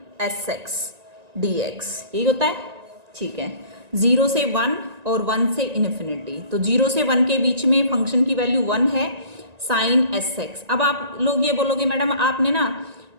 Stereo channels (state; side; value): late; left; 1.9 ms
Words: s x d x, यही होता है, ठीक है। 0 से 1 और 1 से इन्फिनिटी, तो 0 से 1 के बीच में फंक्शन की वैल्यू 1 है, साइन एस एक्स। अब आप लोग ये बोलोगे मैडम आपने ना